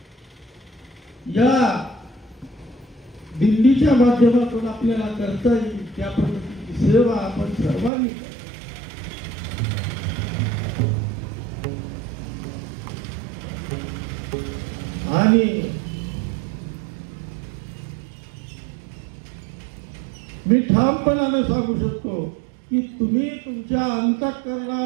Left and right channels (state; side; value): drops out; left; at 7.9 s